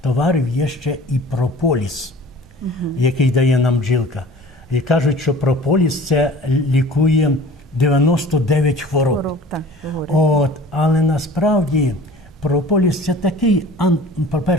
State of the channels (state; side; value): normal; both; correlation 0.44